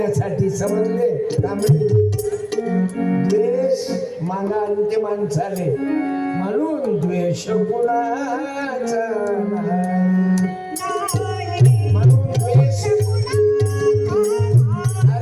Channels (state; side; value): identical; both; correlation 1.00